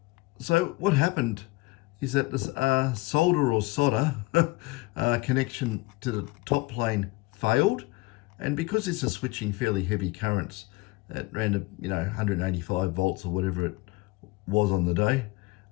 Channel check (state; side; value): quieter; right; 22.2 dB